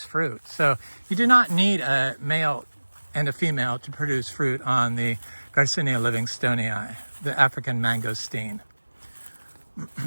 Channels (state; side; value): inverted; both; correlation -1.00